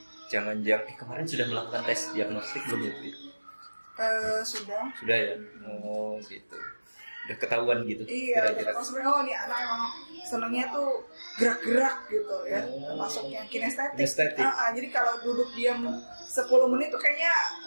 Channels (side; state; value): both; inverted; correlation -1.00